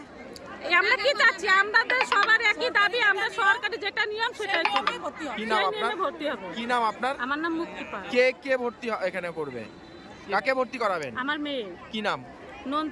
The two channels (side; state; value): both; identical; correlation 1.00